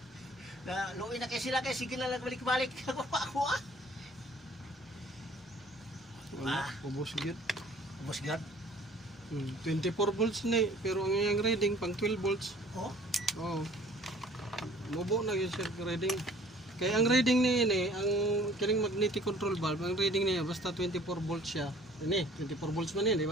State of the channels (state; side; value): normal; both; correlation 0.53